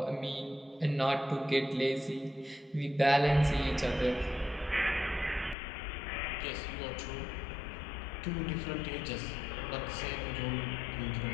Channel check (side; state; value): right; drops out; at 5.6 s